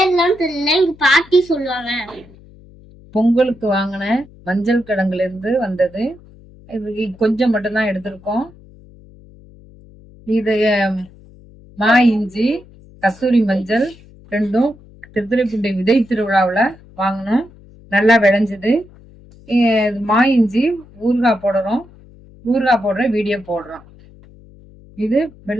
தெரியல, எங்க பாட்டி சொல்லுவாங்க. பொங்கலுக்கு வாங்கின மஞ்சள் கிழங்குல இருந்து வந்தது. இது கொஞ்சம் மட்டும்தான் எடுத்திருக்கோம். இது மா இஞ்சி, கஸ்தூரி மஞ்சள் ரெண்டும் திருத்துறைப்பூண்டி விதை திருவிழாவில் வாங்கினோம். நல்லா விளைஞ்சுது. மா இஞ்சி ஊறுகாய் போடுறோம். ஊறுகாய் போடுற வீடியோ போடுறோம். இது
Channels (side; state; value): left; noise; hum, 24 dB below the sound